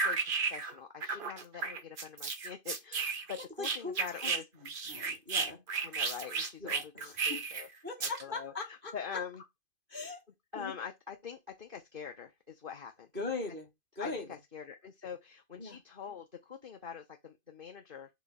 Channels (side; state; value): left; late; 2.5 ms